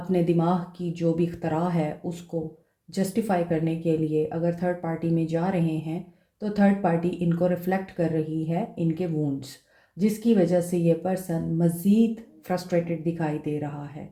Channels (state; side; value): identical; both; correlation 1.00